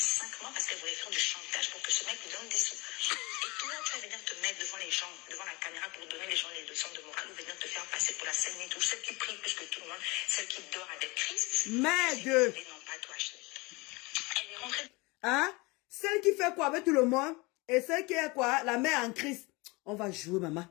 mois parce qu'elle voulait faire du chantage pour que ce mec lui donne des sous. Et toi, tu vas venir te mettre devant les gens, devant la caméra pour donner les gens les leçons de morale ou venir te faire passer pour la scène tout. Celle qui prie plus que tout le monde, celle qui dort avec Christ. Mais Dieu. Non, pas toi, chérie. Elle est rentrée. Hein? Celle qui fait quoi avec tout le monde et celle qui est quoi? La mère en Christ. On va jouer, maman.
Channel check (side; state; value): right; quieter; 25.3 dB